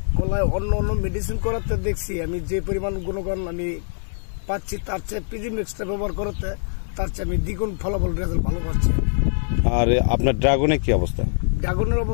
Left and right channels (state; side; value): silent; right; digital silence